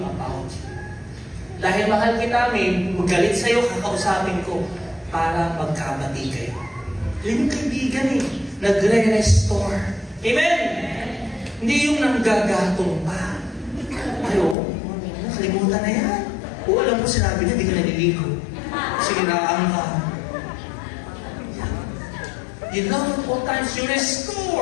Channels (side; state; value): right; drops out; at 14.6 s